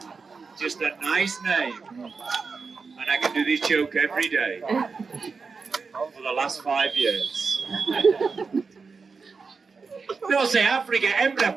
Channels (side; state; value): left; quieter; 4.8 dB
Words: Just a nice name. And I can do this joke every day for the last 5 years. No sé, África, hembra,